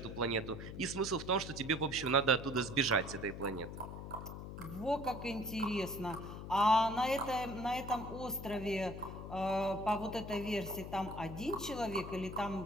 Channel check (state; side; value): noise; left; hum, 9 dB below the sound